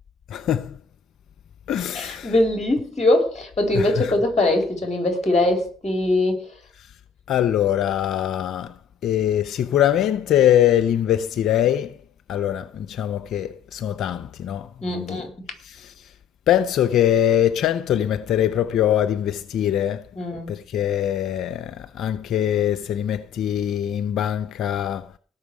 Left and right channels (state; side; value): quieter; right; 6.9 dB